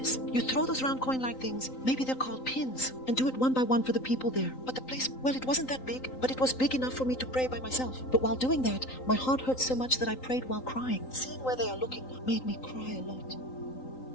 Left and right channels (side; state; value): right; late; 3.9 ms